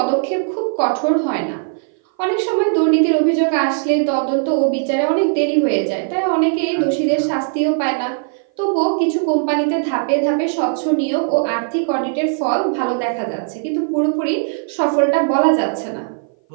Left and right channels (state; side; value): silent; left; 58 dB below the other